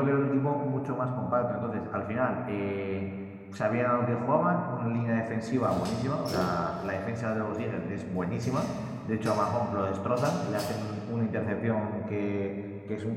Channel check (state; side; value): identical; both; correlation 1.00